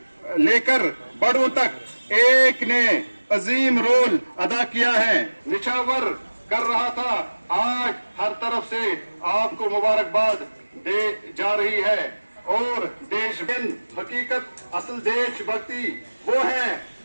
लेकर बड़ों तक एक ने अजीम रोल अदा किया है, निछावर कर रहा था। आज हर तरफ से आपको मुबारकबाद दे जा रही है। और देश हकीकत असल देशभक्ति वो है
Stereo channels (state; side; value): inverted; both; correlation -1.00